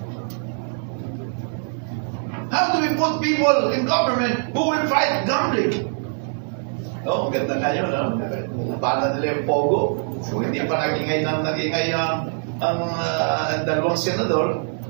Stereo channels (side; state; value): left; silent; 59 dB below the other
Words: How do we put people in government who will fight gambling? Oh, maganda kayo, no? Labanan nila yung pogo. So, hindi pa nagingay ang dalawang senador,